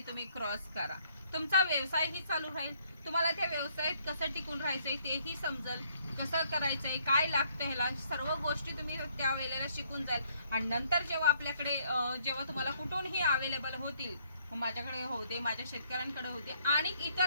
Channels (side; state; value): both; inverted; correlation -0.67